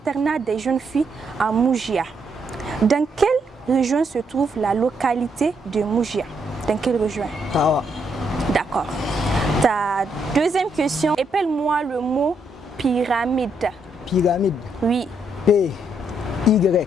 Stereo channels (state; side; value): normal; both; correlation 0.76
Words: des jeunes filles à Moujia. Dans quelle région se trouve la localité de Moujia? Dans quelle région? Tawa. D'accord. Ta deuxième question, appelle-moi le mot pyramide. Pyramide. Oui. P,